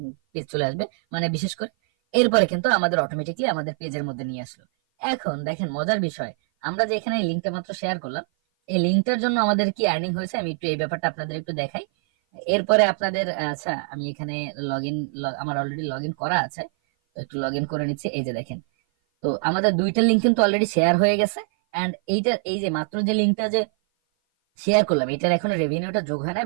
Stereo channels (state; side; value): silent; left; 56 dB below the other